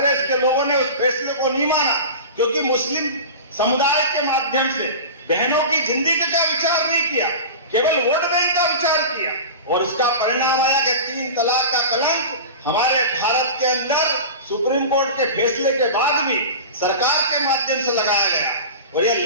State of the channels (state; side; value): inverted; both; correlation -0.31